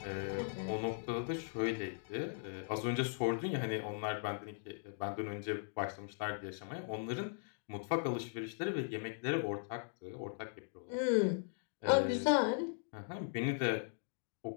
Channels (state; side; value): silent; right; digital silence